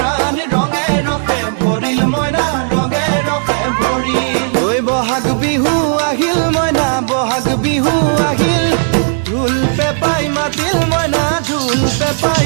ৰঙে ৰখে ভৰিল মইনা ৰঙে ৰখে ভৰিল ঐ বহাগ বিহু আহিল মইনা বহাগ বিহু আহিল ঢোল পেপাই মাতিল মইনা ঢোল পেপাই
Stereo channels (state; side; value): silent; left; digital silence